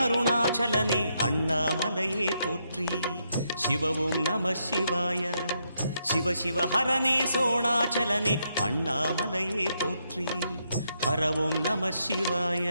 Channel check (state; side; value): inverted; both; correlation -0.78